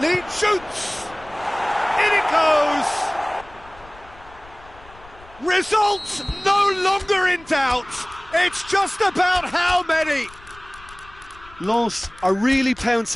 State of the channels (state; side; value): noise; left; rumble, 23 dB below the sound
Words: Shoots! In it goes! Results no longer in doubt. It's just about how many. Lens are really